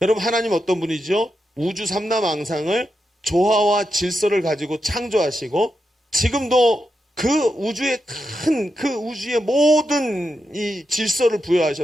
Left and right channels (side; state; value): both; normal; correlation 0.86